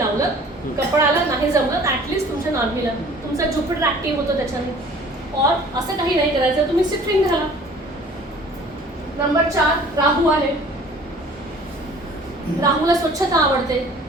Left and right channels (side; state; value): both; normal; correlation 0.49